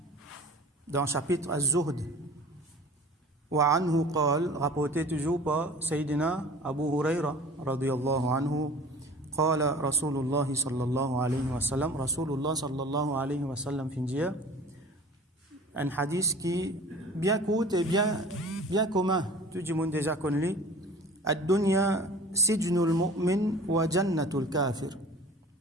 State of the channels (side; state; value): both; normal; correlation 0.43